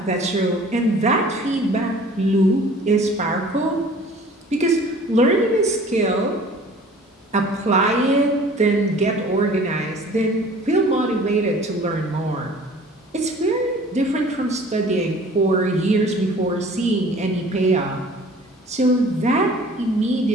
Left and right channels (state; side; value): normal; both; correlation 0.48